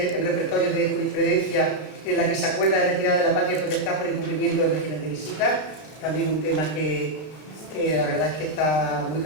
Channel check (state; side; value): late; right; 33 ms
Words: de jurisprudencia en la que se acuerda de retirada de la patria potestad por incumplimiento del régimen de visita, también un tema que la verdad es que está muy